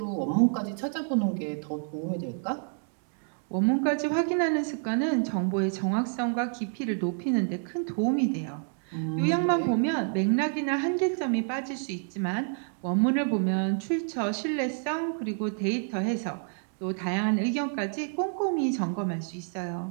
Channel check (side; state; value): left; silent; 59 dB below the other